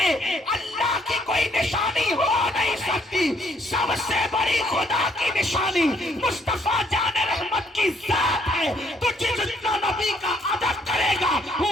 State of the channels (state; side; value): normal; both; correlation 0.68